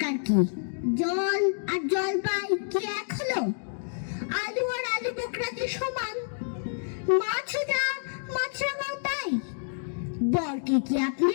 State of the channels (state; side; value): silent; right; digital silence